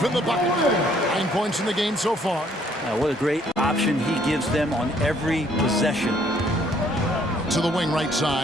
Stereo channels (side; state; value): both; normal; correlation 0.64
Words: in the bucket. 9 points in the game so far. What a great option he gives them on every possession. To the wing right